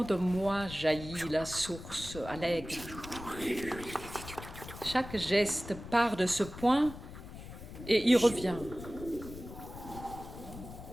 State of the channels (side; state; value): left; noise; rumble, 13 dB below the sound